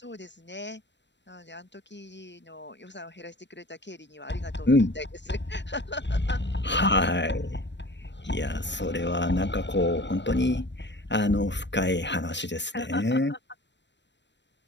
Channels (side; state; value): right; late; 0.52 ms